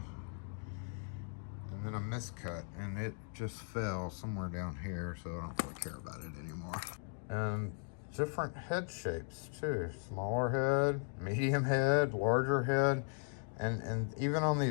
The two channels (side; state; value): right; silent; 53 dB below the other